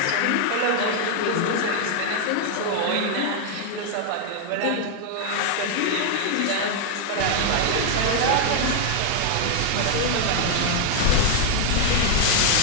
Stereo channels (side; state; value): both; different; correlation 0.00